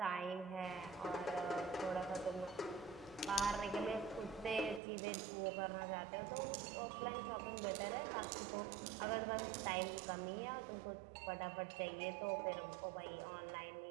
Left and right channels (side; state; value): left; drops out; at 4.8 s